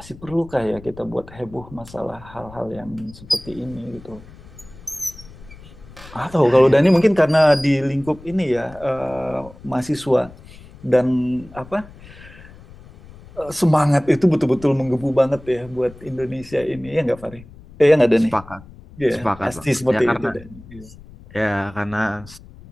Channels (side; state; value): left; noise; rumble, 20 dB below the sound